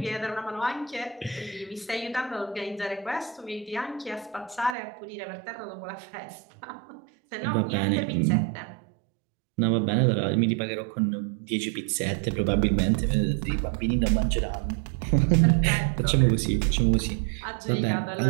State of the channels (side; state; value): left; drops out; at 4.8 s